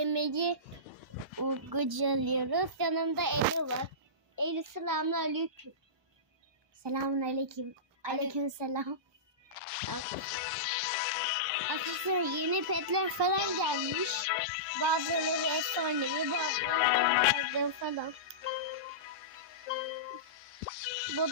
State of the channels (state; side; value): normal; both; correlation -0.19